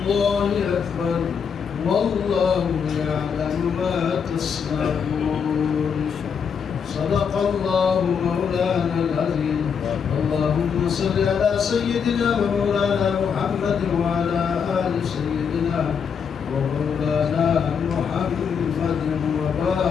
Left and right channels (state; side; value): quieter; right; 6.7 dB